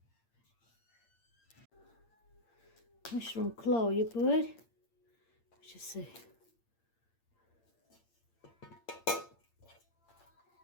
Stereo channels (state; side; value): late; right; 8.7 ms